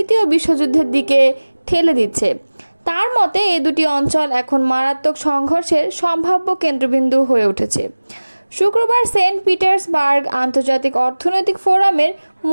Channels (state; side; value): inverted; both; correlation -1.00